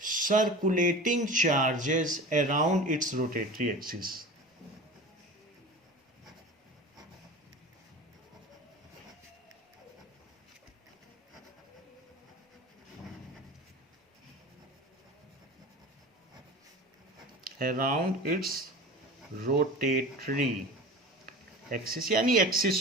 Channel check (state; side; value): normal; both; correlation 0.34